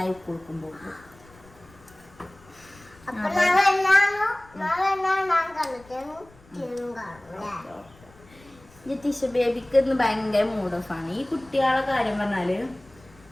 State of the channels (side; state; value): left; noise; rumble, 26 dB below the sound